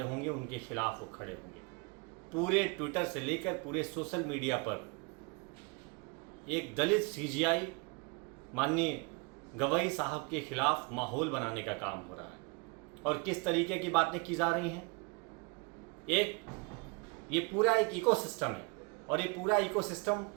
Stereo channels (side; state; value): left; quieter; 30.1 dB